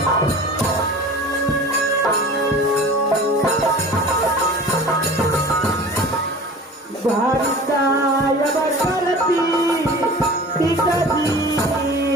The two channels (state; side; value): normal; both; correlation 0.40